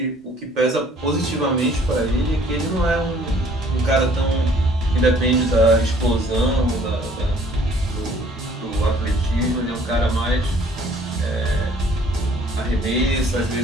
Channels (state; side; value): normal; both; correlation 0.57